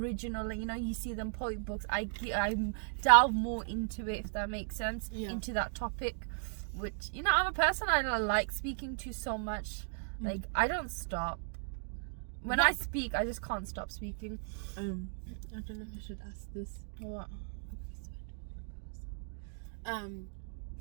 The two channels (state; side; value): silent; left; digital silence